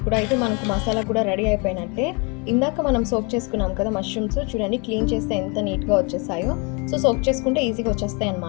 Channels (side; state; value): right; quieter; 31.7 dB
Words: మనకు మసాలా కూడా రెడీ అయిపోయినట్టే. ఇందాక మనం సోక్ చేసుకున్నాం కదా మష్రూమ్స్, చూడండి క్లీన్ చేస్తే ఎంత నీట్గా వచ్చేసాయో. సో సోక్ చేసుకుంటే ఈజీగా వచ్చేస్తాయి